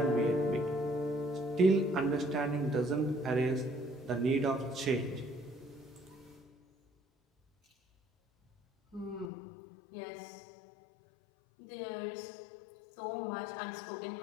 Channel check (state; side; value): drops out; right; at 9.3 s